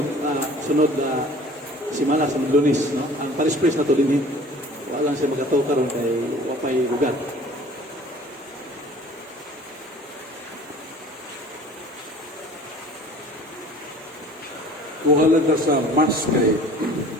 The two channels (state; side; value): normal; both; correlation 0.47